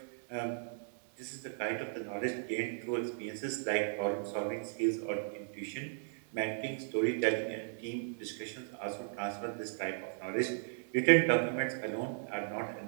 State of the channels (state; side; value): silent; left; digital silence